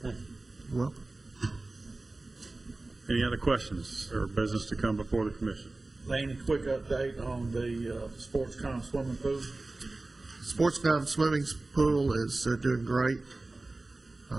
Thank you. You're welcome. Any other questions or business to come before the commission? Laney, quick update on the SportsCom swimming pool. SportsCom swimming pool is doing great.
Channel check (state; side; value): quieter; left; 3.1 dB